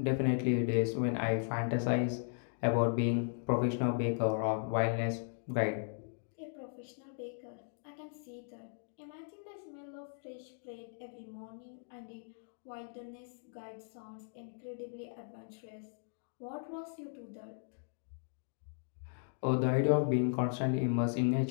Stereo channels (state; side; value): silent; right; digital silence